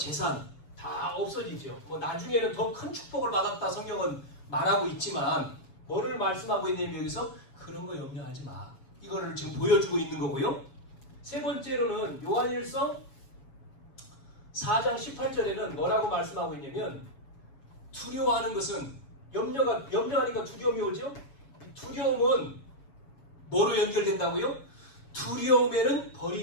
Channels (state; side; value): late; right; 7.2 ms